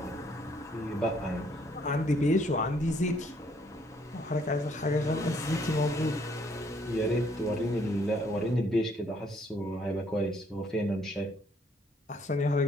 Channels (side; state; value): both; normal; correlation 0.66